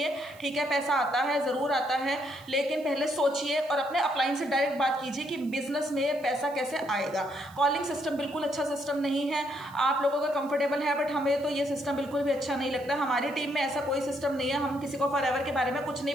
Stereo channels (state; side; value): noise; right; hiss, 25 dB below the sound